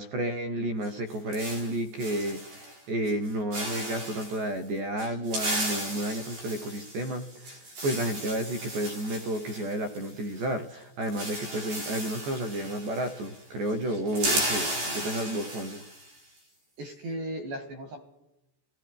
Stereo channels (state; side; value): late; left; 14 ms